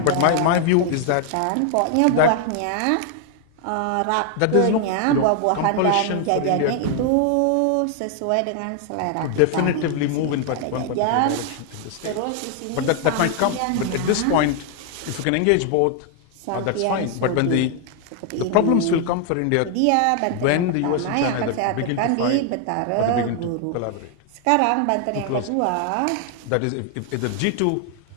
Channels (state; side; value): different; both; correlation 0.00